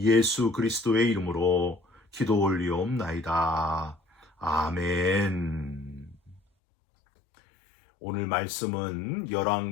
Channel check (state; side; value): drops out; right; at 6.4 s